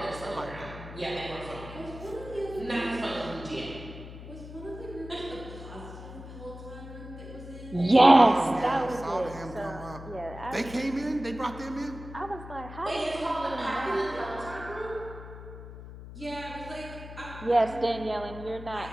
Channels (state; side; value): noise; left; hum, 13 dB below the sound